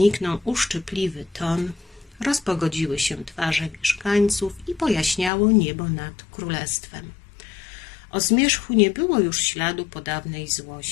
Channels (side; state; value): right; drops out; at 5.3 s